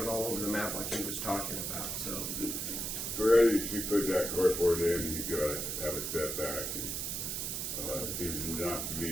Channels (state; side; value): noise; right; hiss, 2 dB below the sound